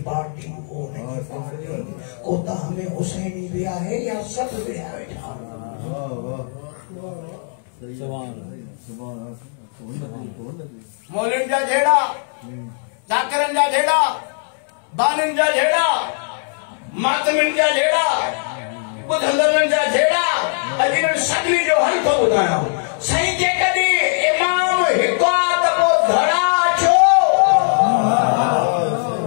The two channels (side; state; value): right; silent; 66 dB below the other